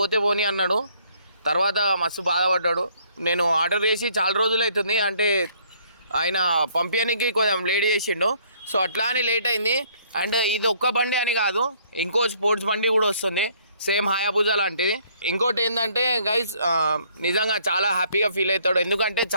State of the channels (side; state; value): both; inverted; correlation -0.64